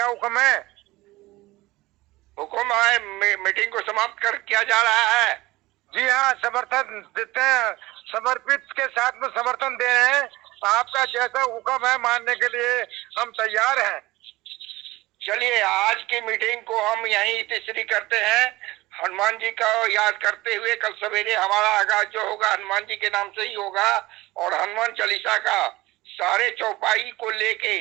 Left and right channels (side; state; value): left; quieter; 19.3 dB